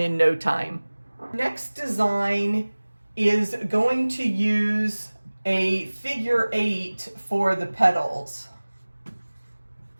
no time. Next design is going to use a figure 8 for the petals.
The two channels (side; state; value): both; inverted; correlation -1.00